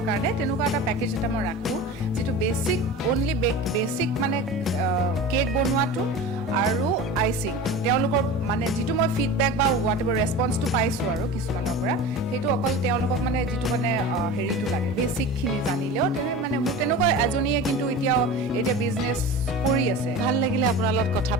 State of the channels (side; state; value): both; normal; correlation 0.33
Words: কাৰণে তেনেকুৱা এটা পেকেজ এটা মই ৰাখোঁ যিটো বেছিক অনলি বেছিক মানে কেক বনোৱাটো আৰু আইচিং তেওঁলোকৰ মানে যিটো মই ফিডবেক বা হোৱাট এভাৰ ৰেছপন্সটো পাইছোঁ আৰু কিছুমানৰ পৰা সেইটো অকল তেওঁলোকক মানে যিটো মানে হেৰিটো লাগে বেছিকখিনি জানিলেও মানে মোৰ তেনেকুৱা এজনীয়ে কিন্তু এতিয়া বিজনেছ কৰি আছে ভাল লাগিলে আপোনাৰ লগত কথা